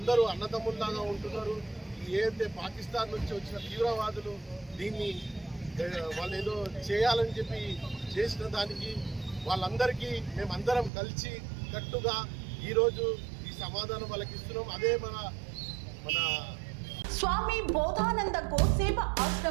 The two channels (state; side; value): drops out; left; at 10.9 s